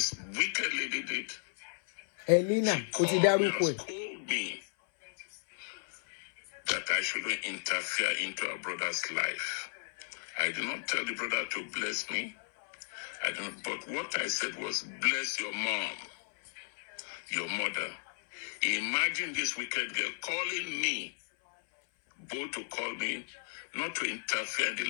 wicked lady did? Elena, she called me that I shouldn't interfere into her brother's life. I did not tell the brother to bless me. But what I said was, bless your mom, your mother. Imagine this wicked girl calling me, both to call me, not to interfere in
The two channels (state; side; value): silent; right; 55 dB below the other